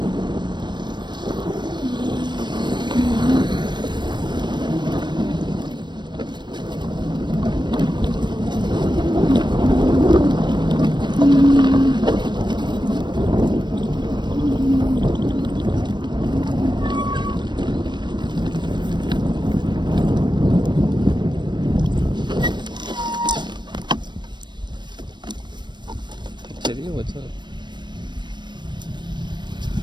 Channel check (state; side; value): late; left; 0.22 ms